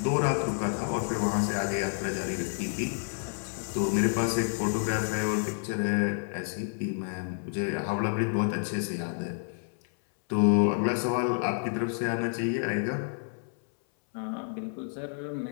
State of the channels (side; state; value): right; silent; 58 dB below the other